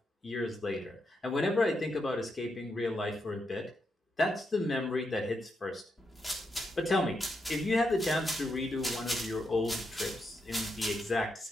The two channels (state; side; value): normal; both; correlation 0.83